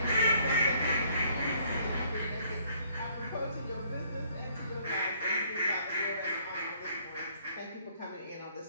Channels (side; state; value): both; inverted; correlation -0.63